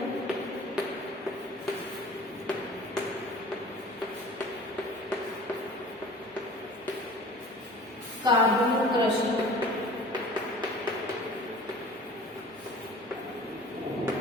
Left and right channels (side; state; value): both; normal; correlation 0.44